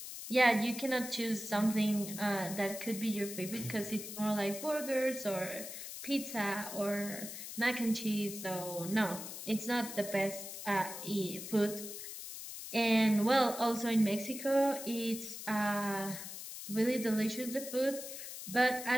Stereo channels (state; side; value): noise; left; hiss, 9 dB below the sound